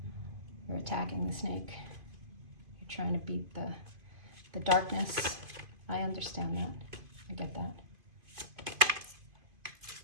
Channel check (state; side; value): late; left; 2.5 ms